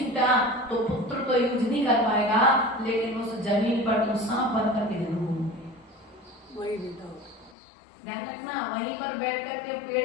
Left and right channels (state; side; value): drops out; right; at 7.6 s